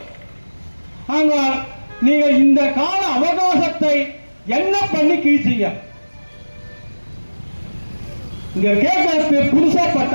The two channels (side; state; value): both; inverted; correlation -1.00